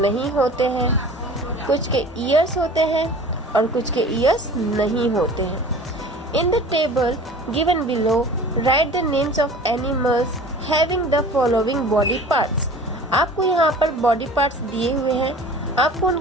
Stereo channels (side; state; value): both; normal; correlation 0.42